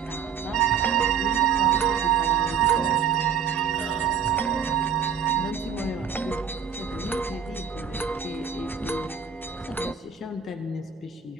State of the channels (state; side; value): quieter; left; 7.5 dB